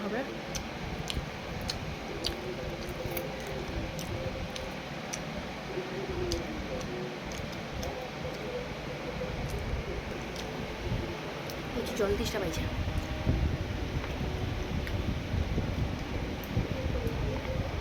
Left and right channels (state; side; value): identical; both; correlation 1.00